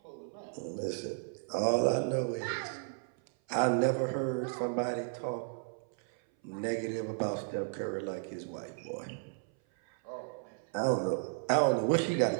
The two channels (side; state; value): left; silent; 55 dB below the other